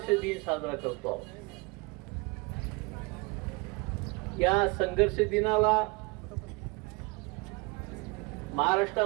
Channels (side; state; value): left; quieter; 27.5 dB